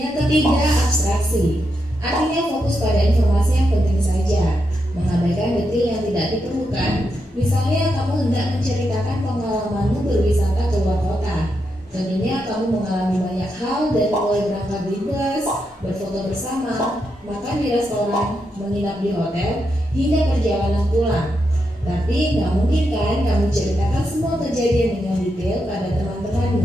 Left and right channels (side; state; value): both; normal; correlation 0.84